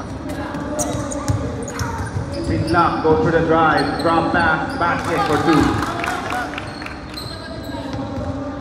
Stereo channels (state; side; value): identical; both; correlation 1.00